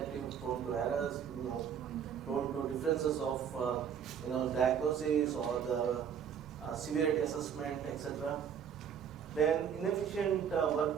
prone to errors, prone to differences of diagnosis or the severity assessment, etc. Then inefficient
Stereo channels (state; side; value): quieter; left; 8.0 dB